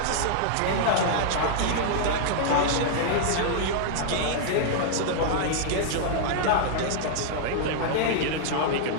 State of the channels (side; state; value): both; different; correlation -0.01